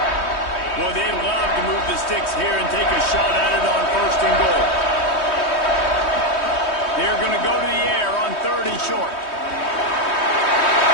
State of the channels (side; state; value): right; late; 3.2 ms